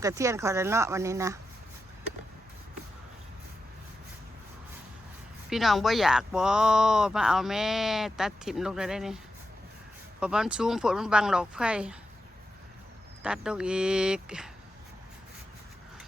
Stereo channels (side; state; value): both; normal; correlation 0.89